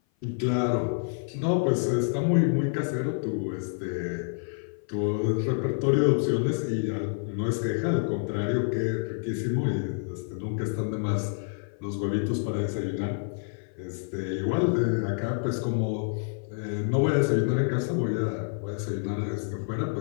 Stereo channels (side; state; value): right; silent; 56 dB below the other